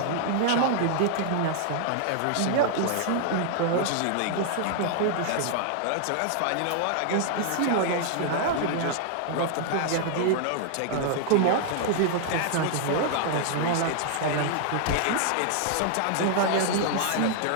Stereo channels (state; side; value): different; both; correlation -0.01